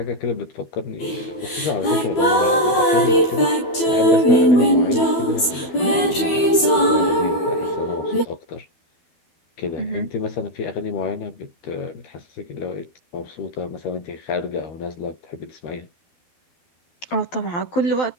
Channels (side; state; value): right; late; 12 ms